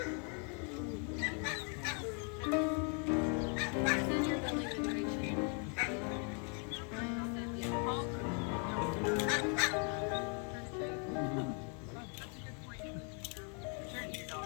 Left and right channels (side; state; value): right; quieter; 39.6 dB